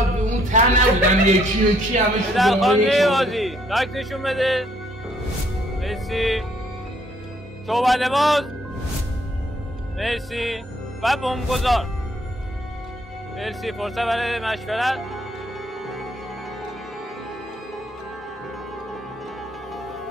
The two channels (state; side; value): normal; both; correlation 0.66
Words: اون ته نبودن یکی یکی همه شد در خانه بازی لایک نشون بده. مرسی. صحبت باز. مرسی. و بمبگذار. مرسی. فرصت برای مشورت.